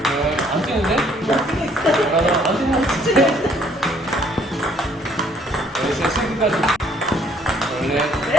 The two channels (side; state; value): both; normal; correlation 0.63